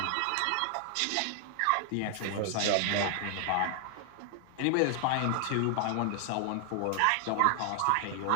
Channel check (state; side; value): different; both; correlation 0.00